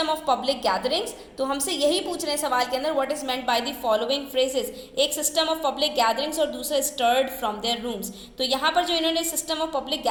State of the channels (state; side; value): identical; both; correlation 1.00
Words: ऑफ पब्लिक गैदरिंग्स, तो हमसे यही पूछ रहे हैं सवाल के अंदर what is meant by the following phrases, एक सिस्टम ऑफ पब्लिक गैदरिंग्स और दूसरा स्टर्ड फ्रॉम देयर रूम्स। तो यहाँ पर जो इन्होंने सिस्टम ऑफ पब्लिक